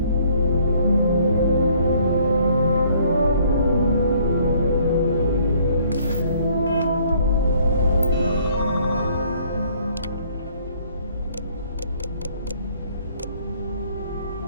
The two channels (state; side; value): inverted; both; correlation -0.61